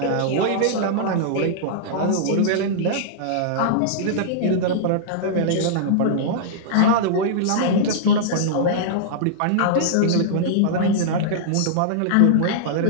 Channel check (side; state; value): both; different; correlation -0.02